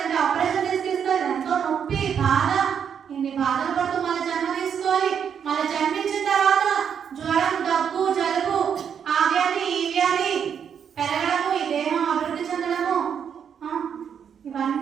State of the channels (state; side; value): quieter; left; 7.8 dB